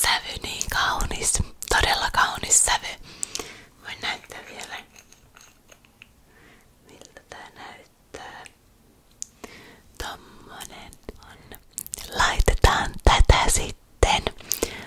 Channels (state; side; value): identical; both; correlation 1.00